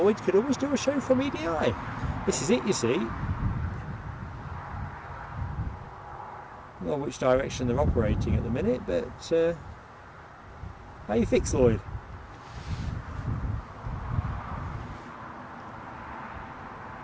could always do a show from EDI. This is it, you see. Well, which direction they're operating at the minute, but how you fixed, Lloyd?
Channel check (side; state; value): both; identical; correlation 1.00